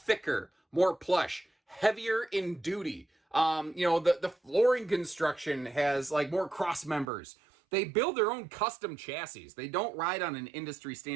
more plush, heavier in duty. The flooring construction has like more cross members. They build their own custom chassis. They don't ride on an industry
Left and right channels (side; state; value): left; drops out; at 7.1 s